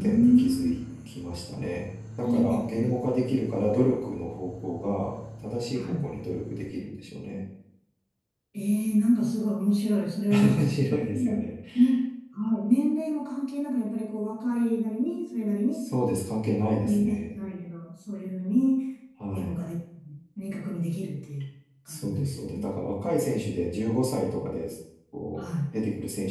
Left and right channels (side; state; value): both; identical; correlation 1.00